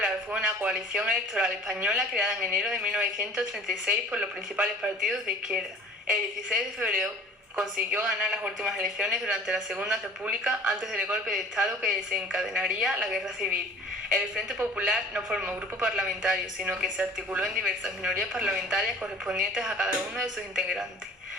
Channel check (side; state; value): both; normal; correlation 0.46